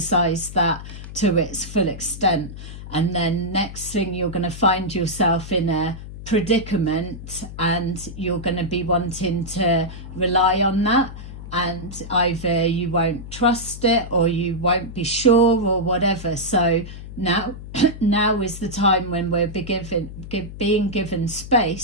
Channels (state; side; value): noise; left; hum, 12 dB below the sound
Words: that to its full extent. And then next thing, you're going to find yourself in a predicament and you're going to be wanting to rely on that, and either you won't trust it or you won't be sure or whatever. So now is the time when we're being given